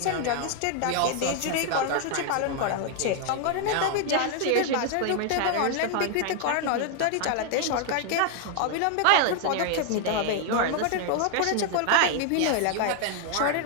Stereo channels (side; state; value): both; different; correlation 0.00